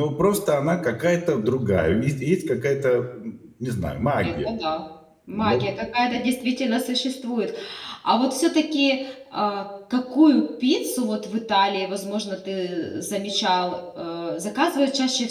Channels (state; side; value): identical; both; correlation 1.00